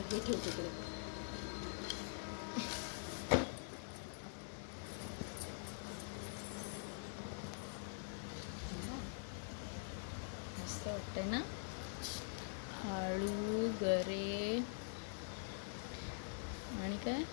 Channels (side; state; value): right; silent; digital silence